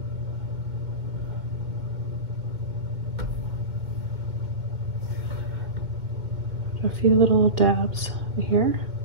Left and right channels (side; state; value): left; late; 2.3 ms